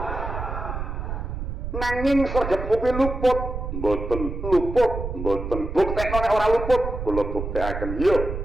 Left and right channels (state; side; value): noise; right; rumble, 5 dB below the sound